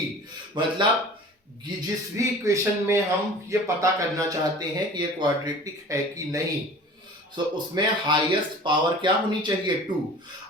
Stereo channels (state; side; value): normal; both; correlation 0.42